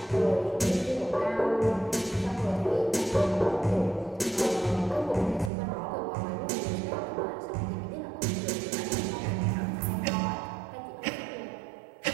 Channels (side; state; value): left; drops out; at 5.5 s